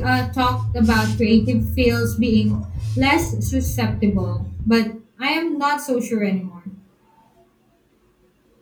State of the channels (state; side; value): identical; both; correlation 1.00